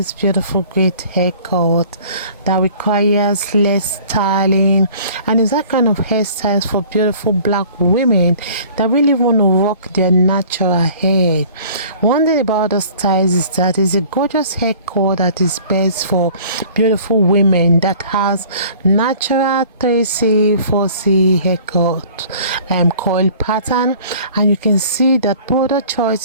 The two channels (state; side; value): inverted; both; correlation -0.50